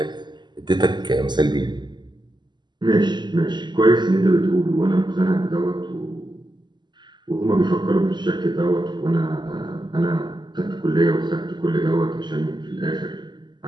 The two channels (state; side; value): late; left; 0.21 ms